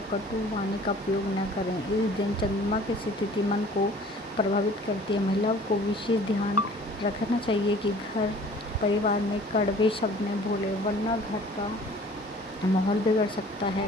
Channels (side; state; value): both; normal; correlation 0.50